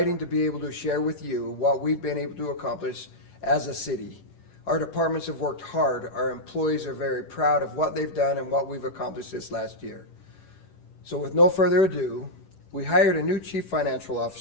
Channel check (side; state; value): right; late; 10 ms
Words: to be able to share with you what we've been able to accomplish as a city. Our departments have worked hard. Our employees are very proud of what they've done and what we've accomplished this last year. So with no further ado, we hired a new Chief Financial